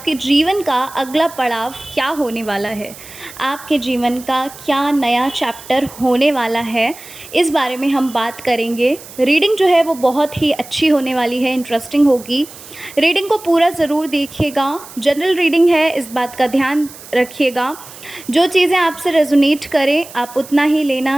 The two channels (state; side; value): noise; right; hiss, 17 dB below the sound